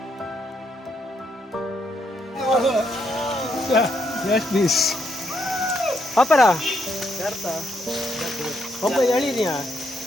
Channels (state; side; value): normal; both; correlation 0.76